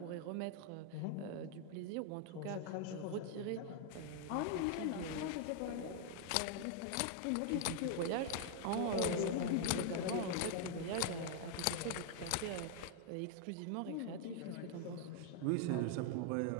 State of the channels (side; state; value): both; different; correlation 0.00